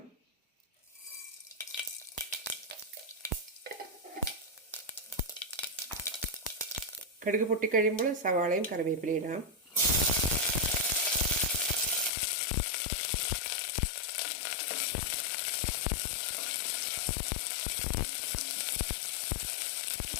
കടുക് പൊട്ടിക്കഴിയുമ്പോൾ സവാളയും കറിവേപ്പിലയും ഇടാം.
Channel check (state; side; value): drops out; right; at 12.1 s